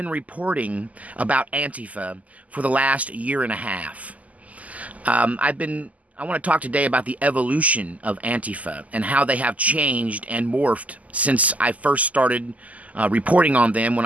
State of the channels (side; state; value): left; late; 0.074 ms